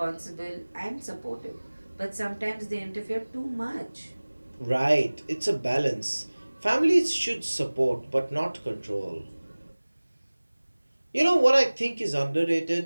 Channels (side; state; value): both; inverted; correlation -1.00